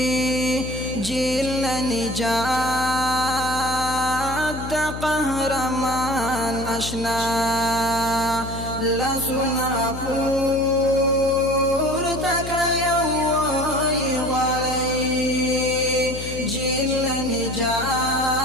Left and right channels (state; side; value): noise; left; hum, 9 dB below the sound